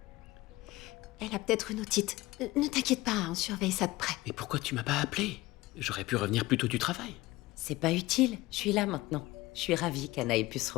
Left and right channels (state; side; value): quieter; right; 19.3 dB